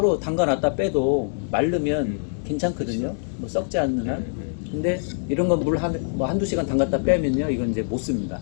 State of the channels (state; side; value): silent; right; digital silence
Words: 담가놨다 빼도 마르면 괜찮거든요. 뭐 썩지 않는 한. 근데 이런 건 물 한두 시간 담갔다 빼면요 이건 이제 못 씁니다.